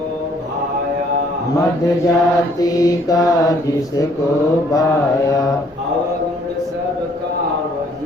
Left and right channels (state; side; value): normal; both; correlation 0.63